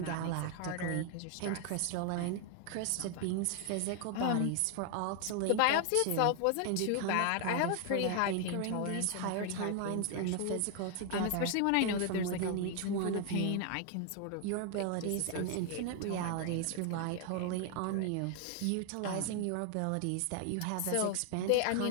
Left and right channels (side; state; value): both; different; correlation 0.00